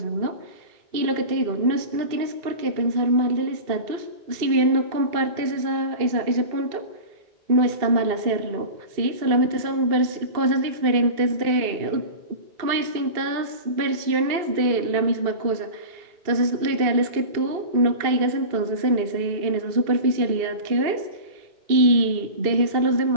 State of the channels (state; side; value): late; left; 2.7 ms